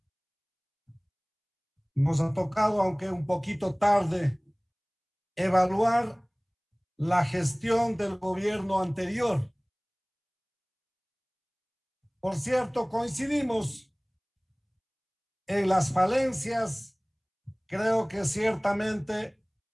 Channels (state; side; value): identical; both; correlation 1.00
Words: nos ha tocado, aunque un poquito tarde, evaluar la gestión del gobierno anterior. Por cierto, coincidimos en las falencias. Creo que ciertamente